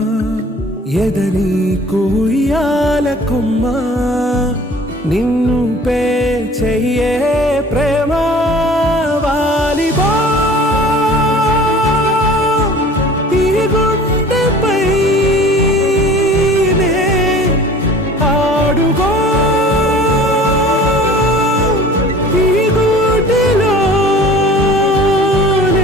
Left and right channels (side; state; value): both; normal; correlation 0.46